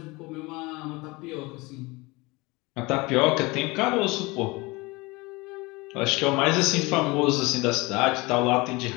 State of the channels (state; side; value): quieter; right; 24.0 dB